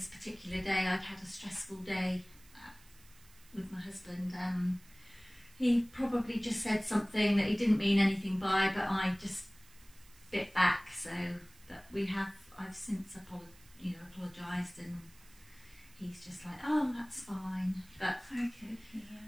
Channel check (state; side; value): noise; right; hiss, 25 dB below the sound